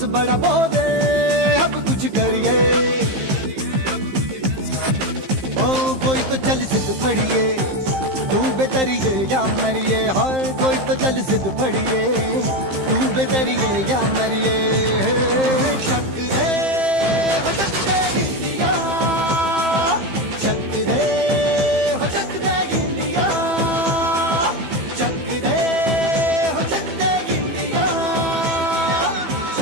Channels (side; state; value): left; late; 15 ms